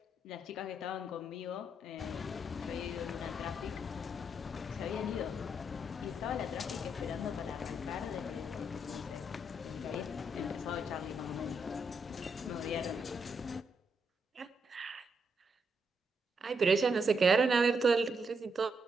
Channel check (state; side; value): normal; both; correlation 0.79